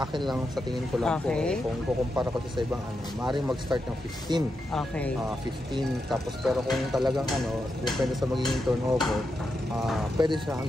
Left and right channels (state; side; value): normal; both; correlation 0.86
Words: lang, sa tingin ko lang Okay. po, kung kukumpara ko sa ibang maaaring mag-start ng 15. Okay. 15, tapos pero kung talagang depende sa magiging turnover, pwede siya